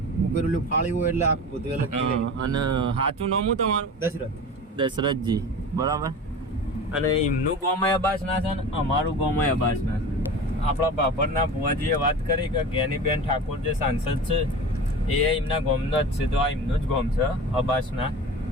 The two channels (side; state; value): both; normal; correlation 0.33